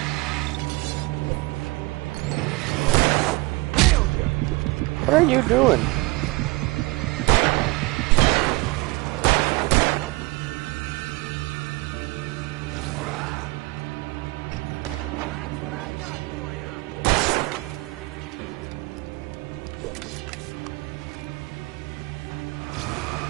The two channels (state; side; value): quieter; left; 23.7 dB